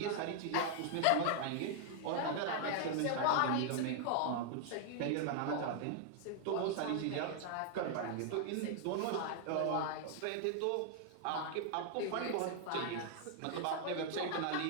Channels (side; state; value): both; different; correlation 0.00